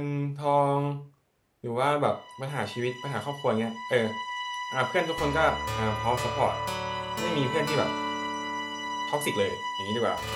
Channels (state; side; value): identical; both; correlation 1.00